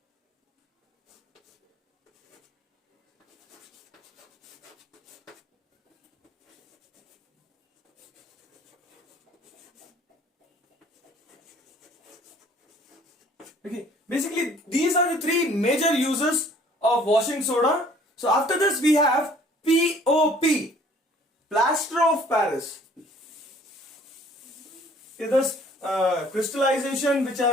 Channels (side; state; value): both; normal; correlation 0.55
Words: Okay, basically these are the three major uses of washing soda. So after this we have POP, plaster of Paris. Okay, this crystallization which